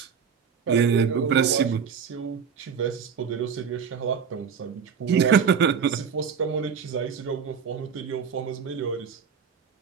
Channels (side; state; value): left; quieter; 6.8 dB